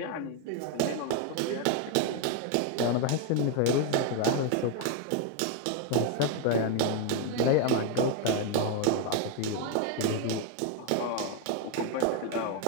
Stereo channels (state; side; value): different; both; correlation 0.01